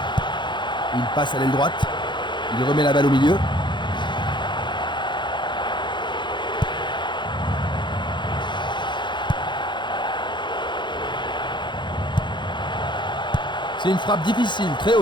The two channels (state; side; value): late; right; 0.23 ms